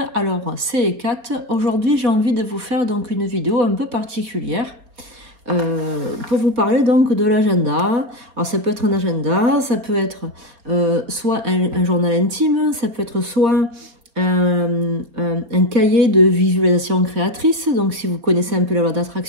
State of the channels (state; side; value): late; left; 4.3 ms